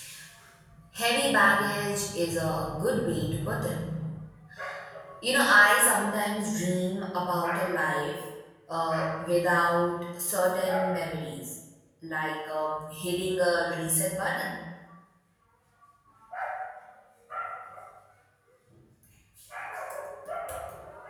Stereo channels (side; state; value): both; identical; correlation 1.00